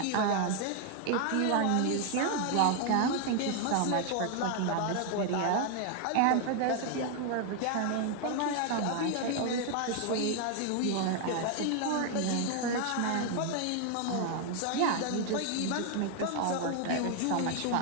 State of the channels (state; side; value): different; both; correlation 0.00